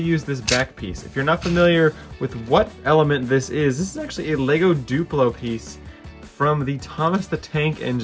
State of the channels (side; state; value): both; identical; correlation 1.00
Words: this back piece. If you're not familiar with what element this is actually a LEGO Duplo piece from the Thomas the Tank